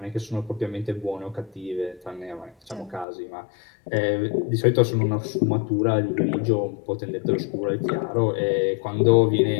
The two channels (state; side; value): drops out; right; at 3.1 s